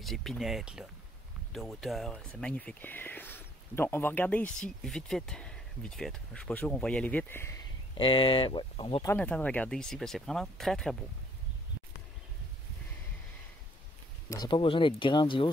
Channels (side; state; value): both; normal; correlation 0.64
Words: épinettes là, de hauteur. C'est magnifique. Donc, on va regarder ici, vite fait. Vite fait. Je suis pas sûr qu'on va y aller vite. Ouais, on va prendre le temps de regarder ici, parce que c'est vraiment très, très beau. Ça n'a pas besoin d'être